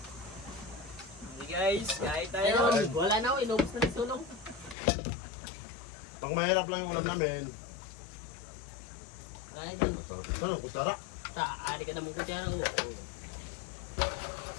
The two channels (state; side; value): drops out; right; at 4.8 s